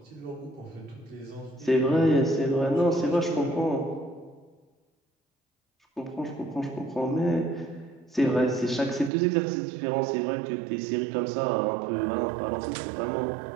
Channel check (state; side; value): drops out; left; at 9.1 s